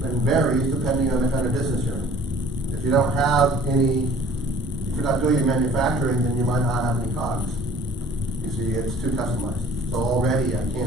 varies depending on the kind of business you're in. If you don't have any, if you're not doing any manufacturing, then you might not have any COGS. You see, it's too customized. So already I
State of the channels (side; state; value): both; normal; correlation 0.50